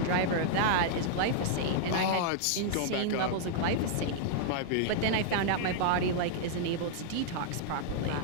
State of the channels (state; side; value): different; both; correlation -0.01